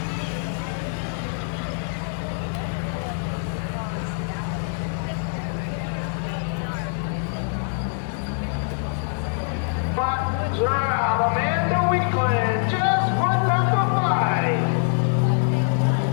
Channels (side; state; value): right; silent; 62 dB below the other